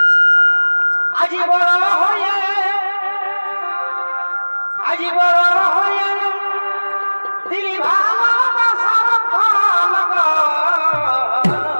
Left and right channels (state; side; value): inverted; both; correlation -1.00